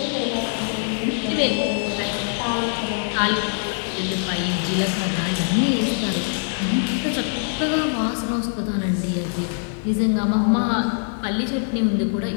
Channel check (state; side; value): silent; right; digital silence